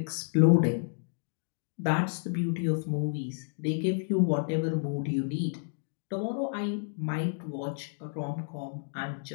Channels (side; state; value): right; silent; digital silence